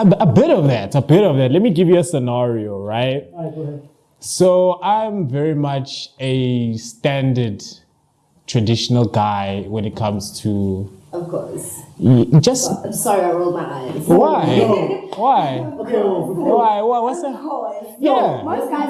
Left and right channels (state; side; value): identical; both; correlation 1.00